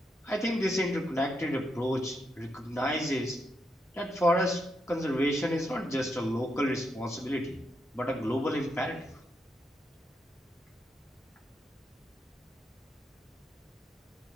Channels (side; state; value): both; normal; correlation 0.81